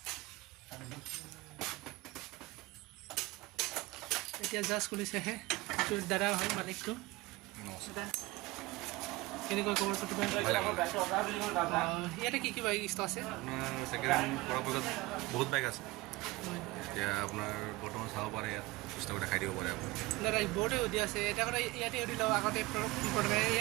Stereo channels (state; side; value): quieter; left; 21.1 dB